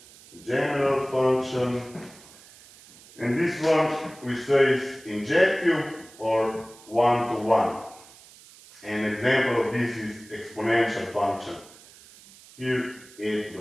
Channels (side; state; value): right; noise; hiss, 22 dB below the sound